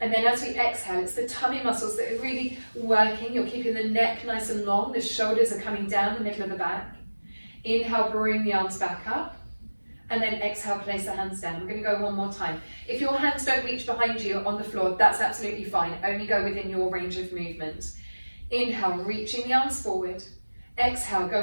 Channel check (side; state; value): both; inverted; correlation -1.00